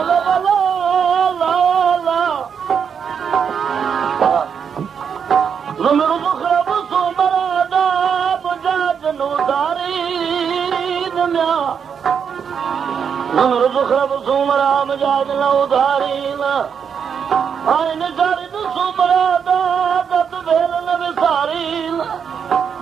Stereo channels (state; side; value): quieter; left; 7.1 dB